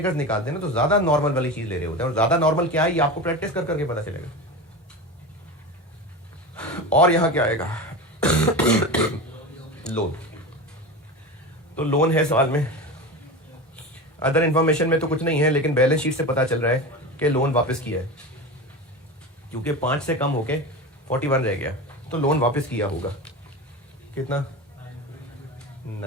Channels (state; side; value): normal; both; correlation 0.26